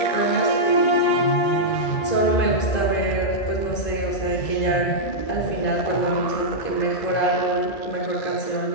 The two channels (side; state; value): right; late; 2.4 ms